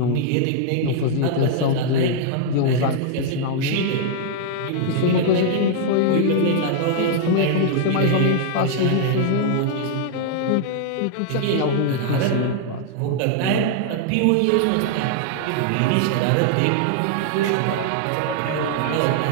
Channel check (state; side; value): different; both; correlation -0.01